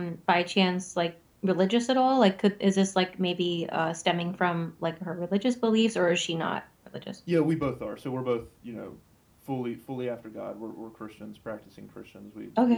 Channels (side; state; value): both; identical; correlation 1.00